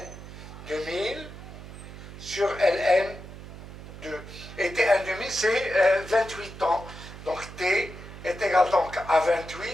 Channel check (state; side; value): noise; right; hum, 14 dB below the sound